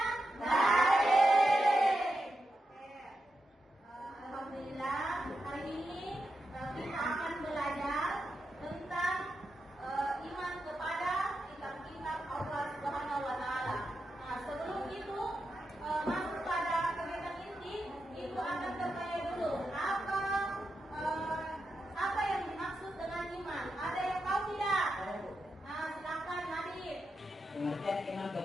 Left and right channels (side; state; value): both; normal; correlation 0.87